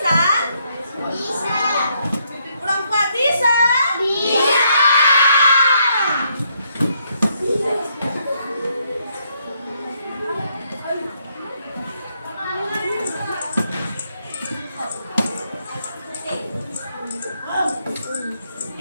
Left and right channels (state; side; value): inverted; both; correlation -0.74